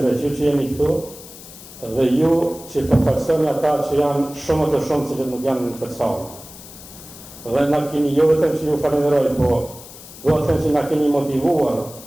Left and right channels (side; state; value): left; noise; hiss, 17 dB below the sound